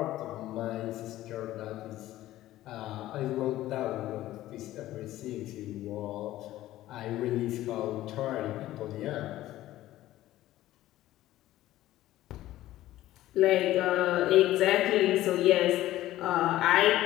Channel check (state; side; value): quieter; right; 14.9 dB